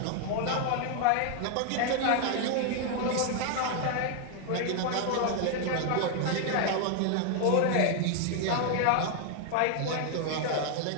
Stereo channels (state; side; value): different; both; correlation 0.00